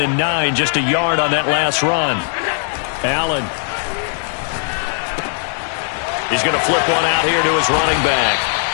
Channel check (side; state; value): right; silent; 67 dB below the other